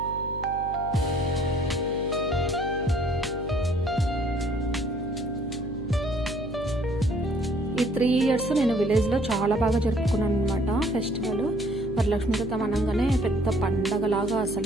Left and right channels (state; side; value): noise; left; hum, 11 dB below the sound